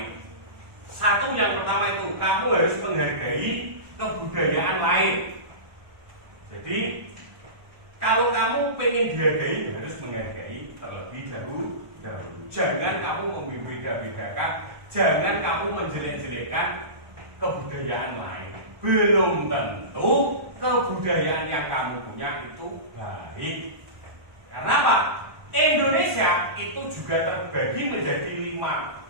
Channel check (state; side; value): late; left; 1.2 ms